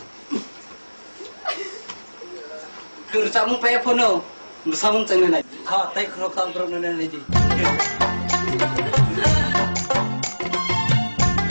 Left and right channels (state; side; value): inverted; both; correlation -1.00